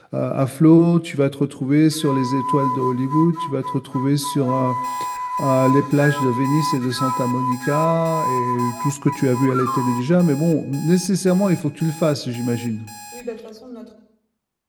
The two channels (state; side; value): identical; both; correlation 1.00